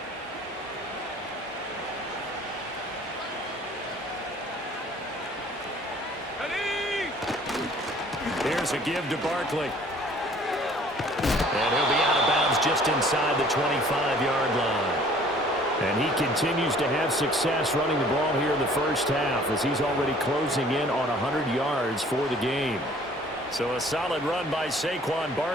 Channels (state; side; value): normal; both; correlation 0.54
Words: Here's a give to Barkley. And he'll be out of bounds just inside the 25-yard line. And he continues to have success running the ball here in the first half as he's already closing in on 100 yards for the game. So a solid run by Saquon